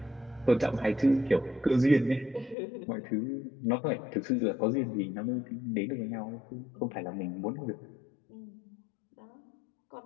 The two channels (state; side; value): drops out; right; at 2.6 s